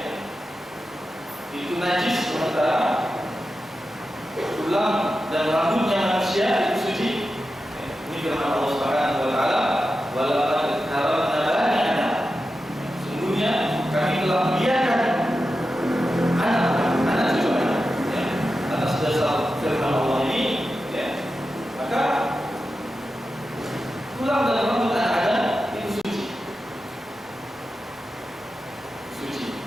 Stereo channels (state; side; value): normal; both; correlation 0.91